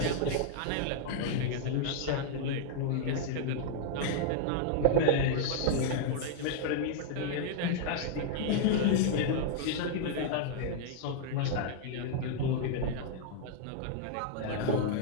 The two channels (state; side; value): different; both; correlation -0.01